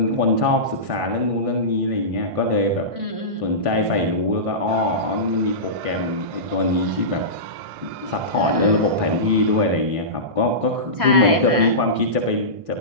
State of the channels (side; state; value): left; late; 1.6 ms